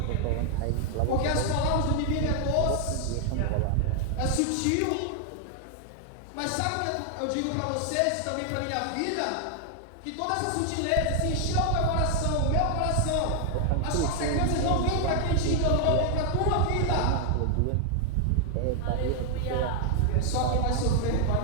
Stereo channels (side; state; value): both; different; correlation 0.00